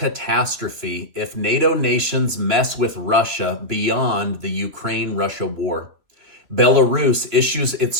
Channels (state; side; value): late; left; 3.0 ms